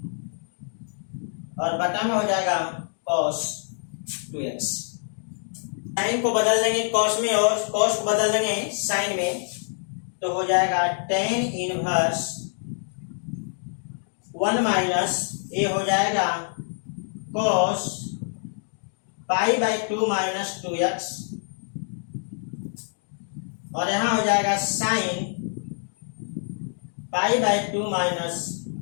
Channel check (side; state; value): right; silent; digital silence